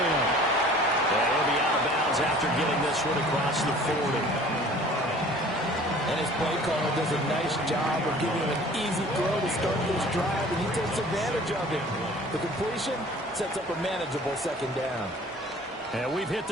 And he'll be out of bounds after getting this one across the 40. And his play caller does a nice job of giving him an easy throw to start this drive, and he takes advantage of it. The completion sets up a manageable 2nd down. And we've hit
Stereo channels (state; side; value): normal; both; correlation 0.48